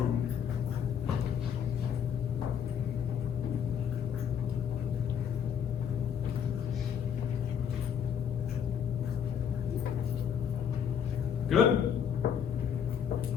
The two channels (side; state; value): right; quieter; 8.0 dB